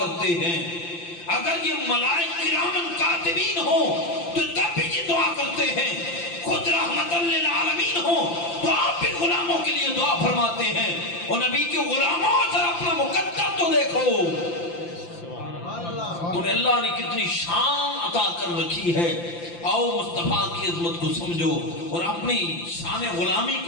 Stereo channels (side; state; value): right; late; 5.8 ms